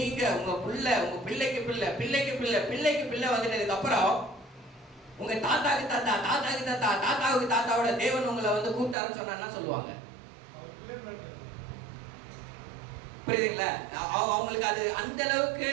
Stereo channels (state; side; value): drops out; left; at 9.0 s